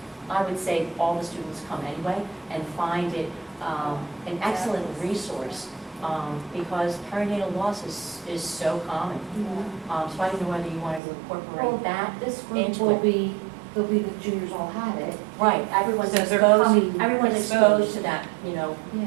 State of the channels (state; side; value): drops out; left; at 11.0 s